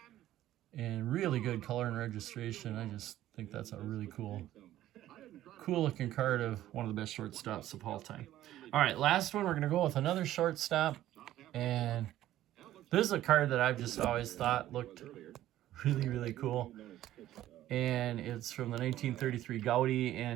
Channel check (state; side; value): quieter; left; 13.6 dB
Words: and really good color and registration. I just think that's a really cool looking card of one of the best shortstops of all time. All right, last one, we're going to go with another shortstop. And this is a card that I've just always thought looked really, really cool. And it's from the 1933 Gaudy.